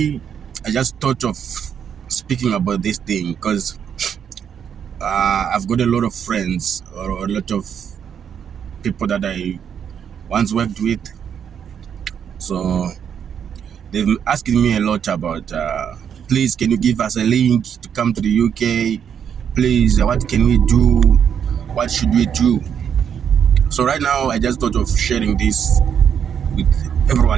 I just thought of speaking about this thing because I've got a lot of friends or a lot of people that I once worked with. So they've been asking me a lot about, please, can you give us a link to come to the UK? Please, what can we do? What should we do? So right now, I just thought of sharing this with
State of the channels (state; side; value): quieter; left; 8.1 dB